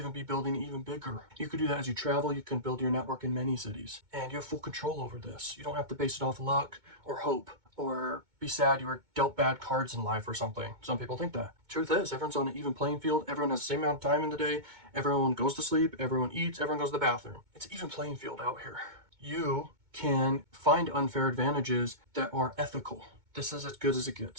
be building even bigger. You could do that as you travel. You can build your network in many cities, and you have full control over this. You don't have to base it off luck or hope or be sad you were dealt bad cards in life or something. Some people think that. Truth is, everyone's on an even playing field. Everyone has the same amount of time in the day. Everyone goes to sleep. Everyone eats. Everyone goes to the bathroom. It's an even playing field out here. You can find unfair advantages that are ethical. This is as good as it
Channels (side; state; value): left; late; 2.2 ms